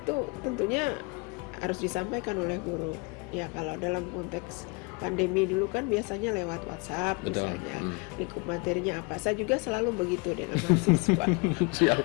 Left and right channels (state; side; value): quieter; right; 30.1 dB